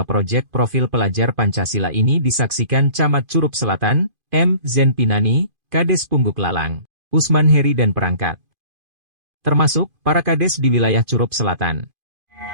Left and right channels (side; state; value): left; late; 2.5 ms